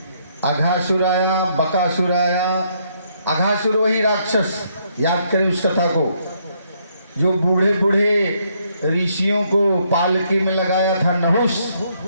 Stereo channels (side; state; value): both; inverted; correlation -0.72